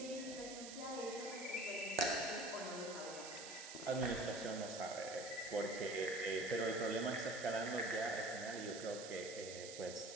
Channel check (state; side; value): noise; right; hiss, 9 dB below the sound